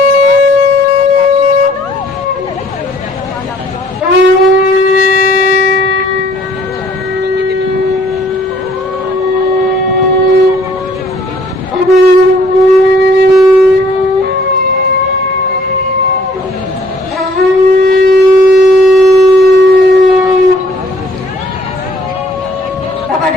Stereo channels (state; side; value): normal; both; correlation 0.60